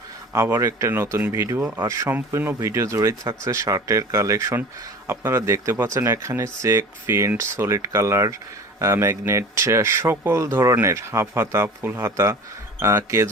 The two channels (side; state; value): both; normal; correlation 0.39